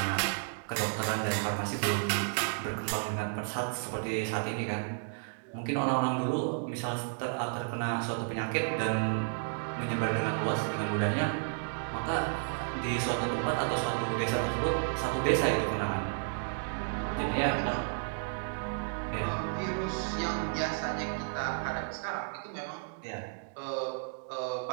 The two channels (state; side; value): silent; left; digital silence